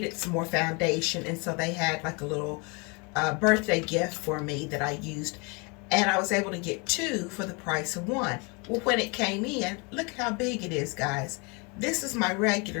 some more foundation. And so they had like a little birthday gift for me that I used. And I was able to get two for the price of one. Well, when it came in, look how big it is, guys. This is my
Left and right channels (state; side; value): quieter; right; 31.0 dB